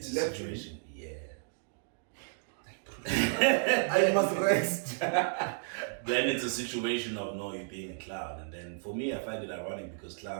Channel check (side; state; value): left; silent; digital silence